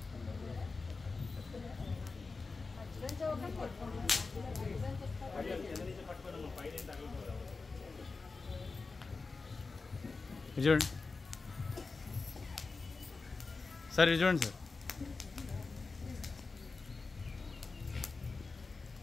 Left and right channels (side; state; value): right; quieter; 4.1 dB